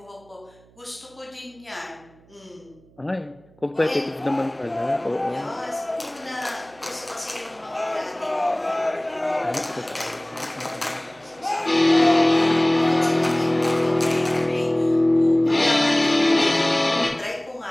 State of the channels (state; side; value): noise; right; hum, 29 dB below the sound